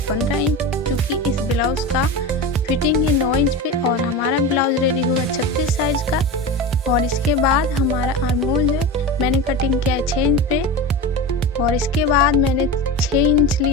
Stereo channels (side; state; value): both; normal; correlation 0.25